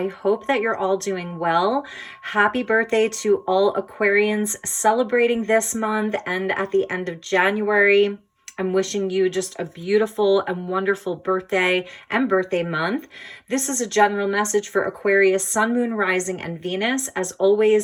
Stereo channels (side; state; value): both; identical; correlation 1.00